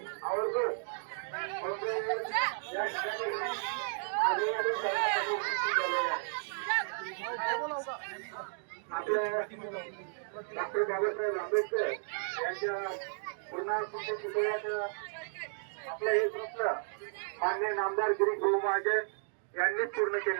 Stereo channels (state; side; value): silent; left; digital silence